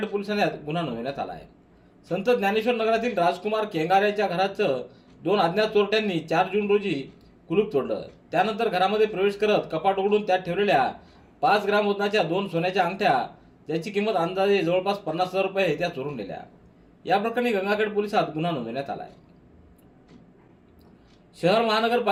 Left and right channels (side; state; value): both; identical; correlation 1.00